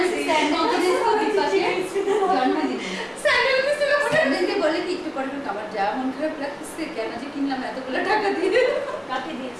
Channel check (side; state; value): both; identical; correlation 1.00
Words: স্যান্ডেল দিতে পাশে স্যান্ডেল দিছিল স্যান্ডেলকে বলে কি একটু পরে আমার যা মন খারাপ লাগছে কেন যে কিনলাম এতগুলো টাকা দিয়ে কাকে